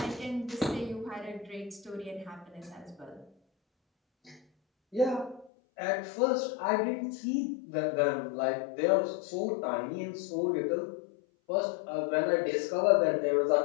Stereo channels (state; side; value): drops out; right; at 5.5 s